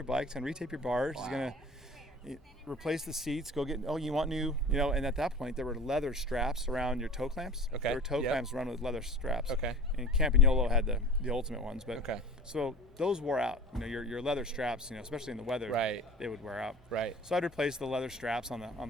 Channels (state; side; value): normal; both; correlation 0.40